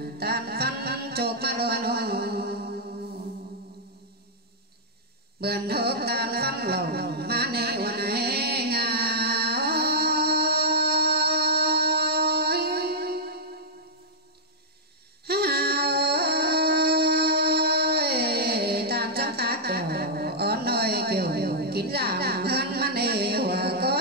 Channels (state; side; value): normal; both; correlation -0.08